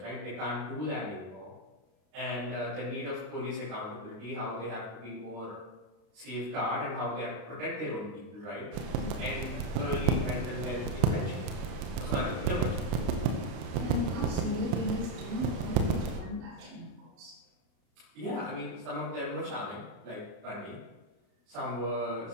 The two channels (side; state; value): left; late; 33 ms